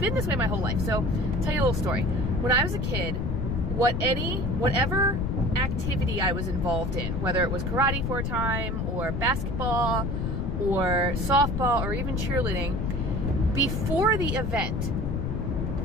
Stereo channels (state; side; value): noise; left; rumble, 1 dB below the sound